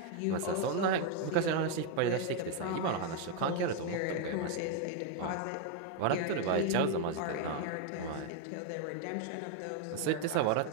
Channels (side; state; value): both; different; correlation 0.01